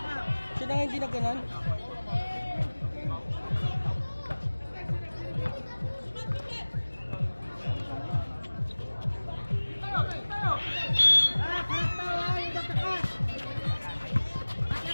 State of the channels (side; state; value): both; inverted; correlation -1.00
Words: Siya na nga hindi nagganan.